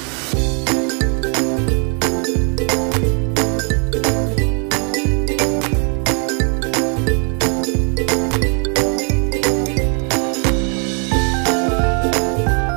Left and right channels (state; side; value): quieter; left; 39.6 dB